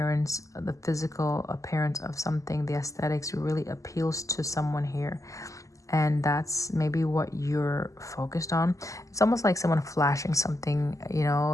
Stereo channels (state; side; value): late; right; 0.16 ms